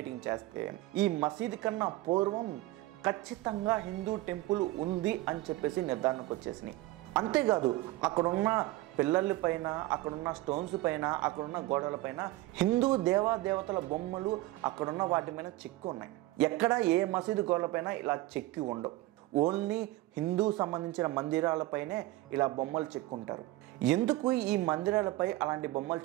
చేస్తే ఈ మసీదు కన్నా పూర్వం ఖచ్చితంగా హిందూ టెంపుల్ ఉంది అని చెప్పేసి నిర్ధారణకు వచ్చేసినాయి. అంతేకాదు అక్కడున్న పిల్లల పైన, అక్కడున్న స్టోన్స్ పైన, అక్కడున్న గోడల పైన హిందూ దేవతల బొమ్మలు అక్కడున్న వాటి పైన చెక్కి ఉన్నాయి. ఎక్కడ ఏ మసీదు గోడలపైన ఇలా చెక్కి ఉండవు, ఓన్లీ హిందూ సంబంధించిన మందిరాలపైనే ఇలా బొమ్మలు చెక్కుంటారు. ఎందుకు ఈ మందిరాలపై అలాంటి బొమ్మలు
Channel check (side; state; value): left; quieter; 18.1 dB